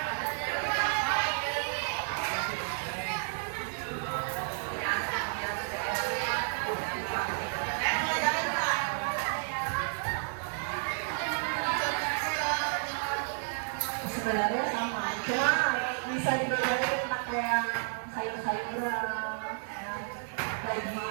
bisa dibedain pakai yang sayur-sayuran, ya,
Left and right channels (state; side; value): silent; left; digital silence